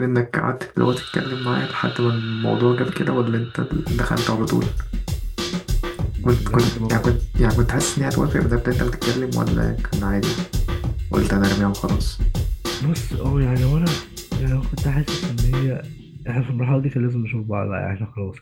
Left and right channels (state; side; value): identical; both; correlation 1.00